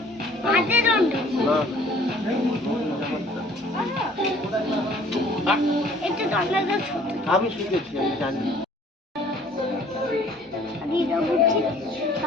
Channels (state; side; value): normal; both; correlation 0.55